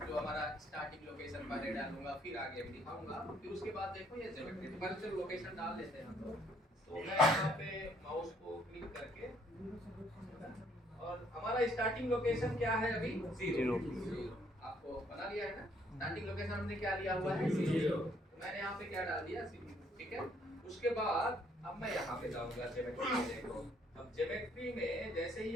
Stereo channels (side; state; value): both; normal; correlation 0.66